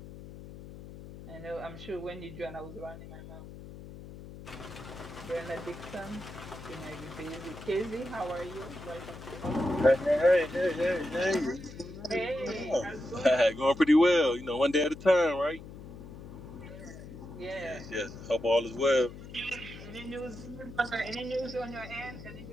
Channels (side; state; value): left; noise; hum, 14 dB below the sound